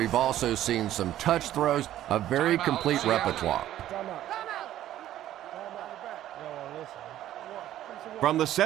also seen some touch throws, a very complete repertoire. From the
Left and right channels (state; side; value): quieter; left; 12.8 dB